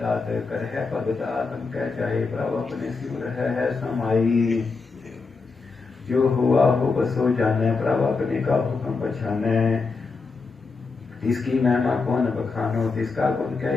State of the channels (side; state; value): right; quieter; 4.3 dB